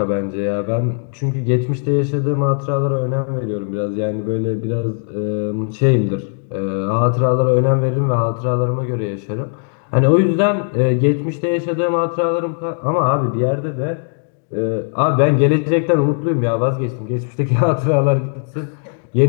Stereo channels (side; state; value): right; silent; 56 dB below the other